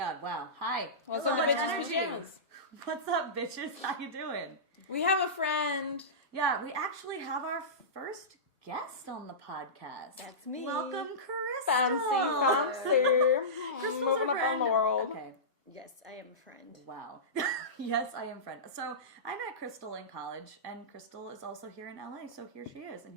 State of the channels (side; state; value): both; normal; correlation -0.19